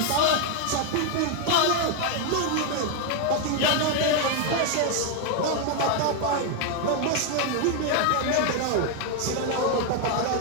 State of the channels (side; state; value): both; different; correlation 0.01